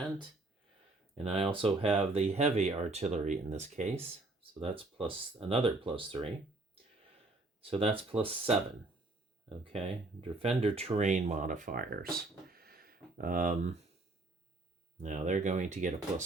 And I also have the heavy artillery in this case. So that's another +3. So that's +7. Okay, defender terrain modifiers. Now they're going to get a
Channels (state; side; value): quieter; left; 3.1 dB